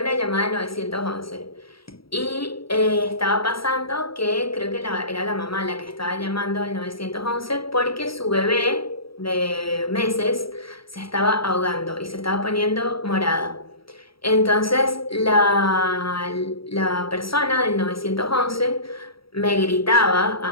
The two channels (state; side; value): late; right; 0.75 ms